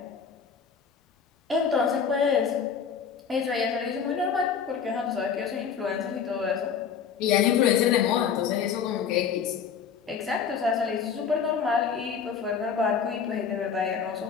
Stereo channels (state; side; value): quieter; right; 6.8 dB